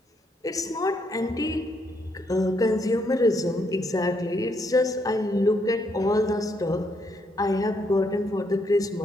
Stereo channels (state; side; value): normal; both; correlation 0.74